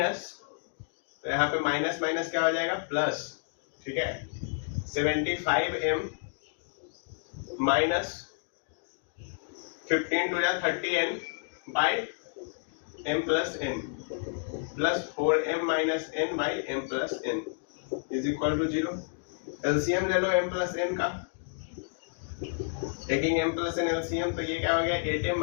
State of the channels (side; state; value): right; silent; digital silence